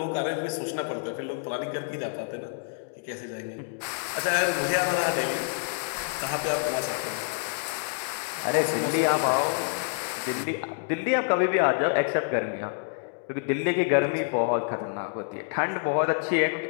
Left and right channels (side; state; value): right; silent; digital silence